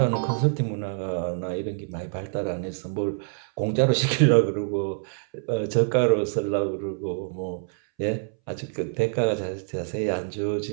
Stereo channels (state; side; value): silent; left; 61 dB below the other